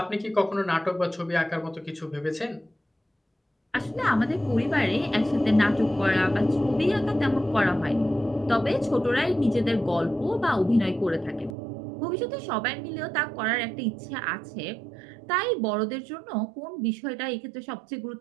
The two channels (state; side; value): drops out; left; at 11.6 s